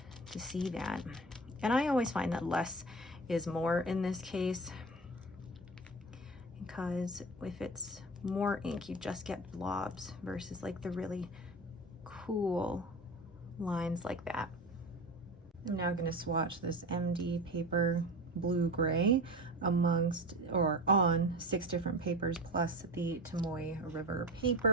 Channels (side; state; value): both; normal; correlation 0.30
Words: to see that. And I always find that less is more in this case, because if it's more ink, you just get blobs versus like the really cool lines like that. I'm now going to swatch this MD paper blue gray amongst or on 6 different papers plus the Tomoe River